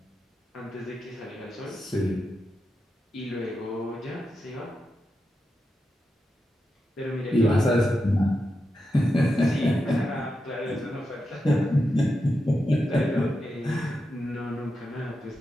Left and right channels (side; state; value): both; normal; correlation 0.88